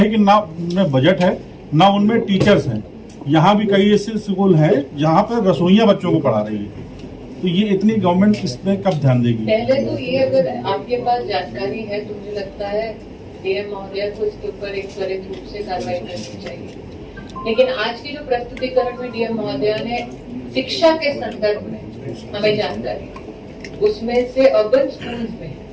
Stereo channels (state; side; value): identical; both; correlation 1.00